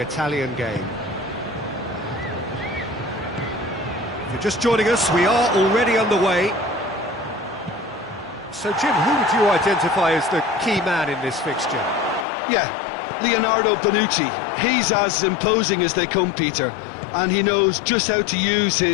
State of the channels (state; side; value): drops out; right; at 12.2 s